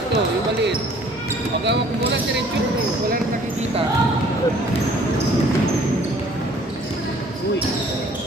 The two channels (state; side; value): normal; both; correlation 0.55